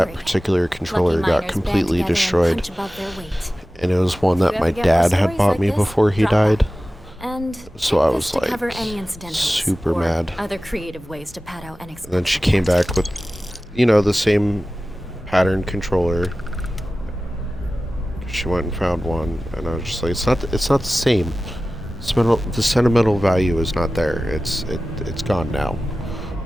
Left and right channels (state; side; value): normal; both; correlation 0.96